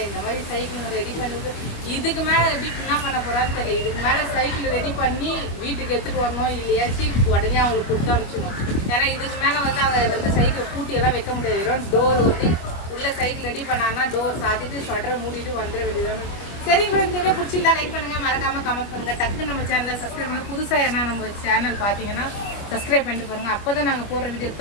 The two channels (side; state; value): right; late; 25 ms